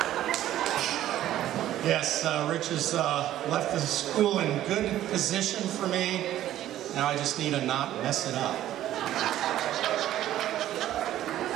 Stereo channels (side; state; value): left; quieter; 12.9 dB